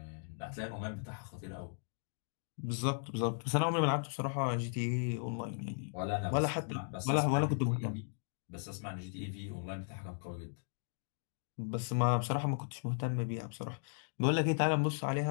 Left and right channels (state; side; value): silent; right; digital silence